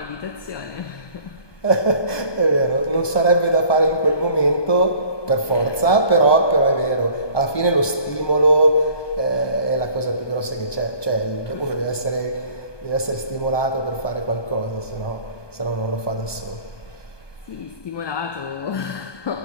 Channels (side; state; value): right; late; 1.2 ms